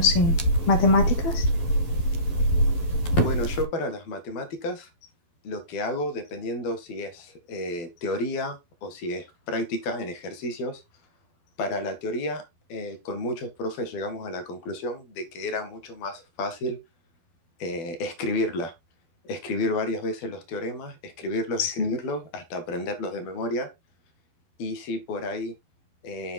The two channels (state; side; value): late; right; 11 ms